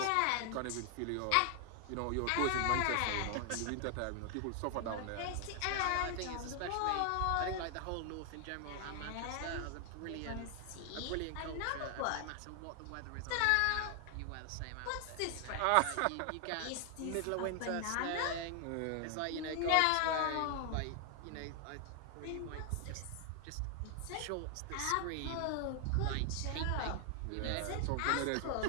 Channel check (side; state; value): both; different; correlation 0.00